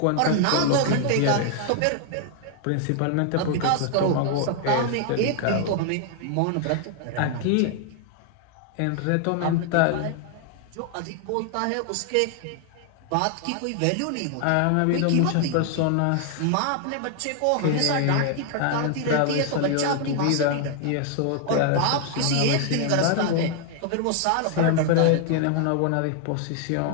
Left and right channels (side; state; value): both; different; correlation 0.00